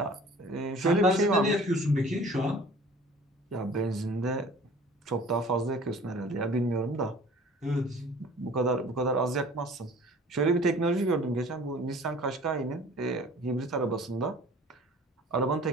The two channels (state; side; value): normal; both; correlation 0.47